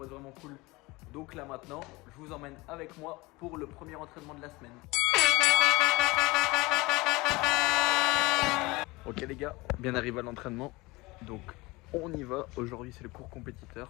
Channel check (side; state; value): right; quieter; 22.6 dB